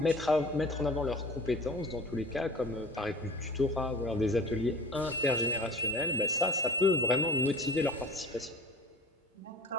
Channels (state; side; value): normal; both; correlation 0.41